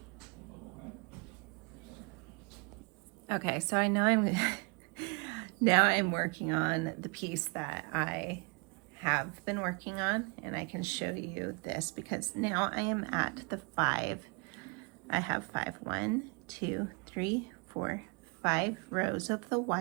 Okay, so I know now I'm working on the piece that I have been working on, and I can show you this because now I am at the 5. I have 5, 1, 2, 3, 4, 5 rows of the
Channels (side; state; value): left; quieter; 32.3 dB